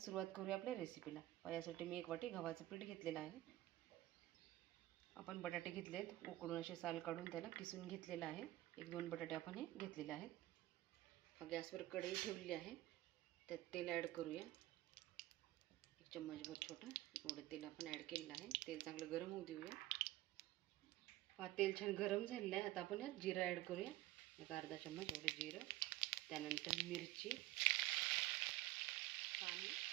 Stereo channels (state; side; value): quieter; left; 16.3 dB